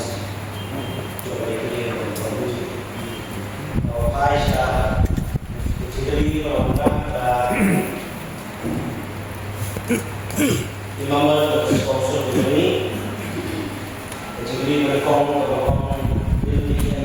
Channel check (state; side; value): identical; both; correlation 1.00